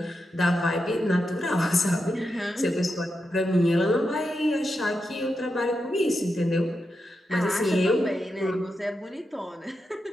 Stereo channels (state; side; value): normal; both; correlation 0.87